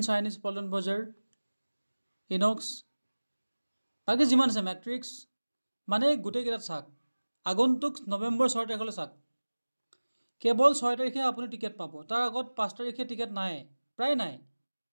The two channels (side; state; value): both; inverted; correlation -1.00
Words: চাইনিজ পল্টন বজাৰ, ইনক্স, বাকী যিমান আছে মেট্ৰিক্স, মানে গোটেইকেইটাত চাওক। আগন্তুক নৱেম্বৰ 6 তাৰিখলৈ চাওক, কেৱল 6 তাৰিখে আপুনি টিকেট পাব। তাৰ আগত 5 তাৰিখে টিকেট নাই, প্ৰায় নাই,